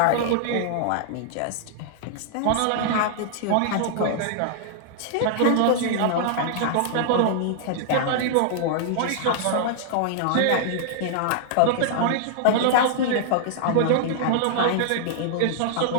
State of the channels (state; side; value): different; both; correlation -0.01